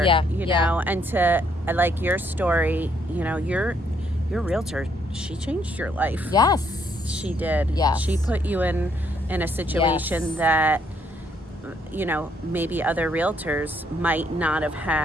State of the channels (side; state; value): both; normal; correlation 0.71